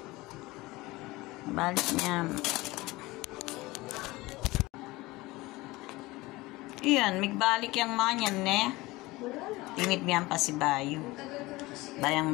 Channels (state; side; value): quieter; right; 20.6 dB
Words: Balik niya. Iyan, migbalik yung mga yan, ne? Tinid niyan pa si Bayo. Bayang